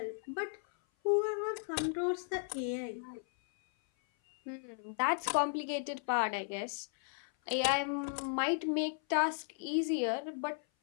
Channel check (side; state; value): right; silent; 54 dB below the other